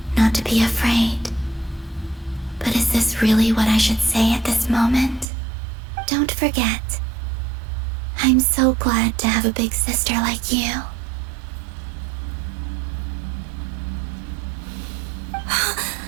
Not to be afraid. But is this really what I should say at this moment? Don't forget. I'm so glad to have a big sister like you.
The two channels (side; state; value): left; drops out; at 5.2 s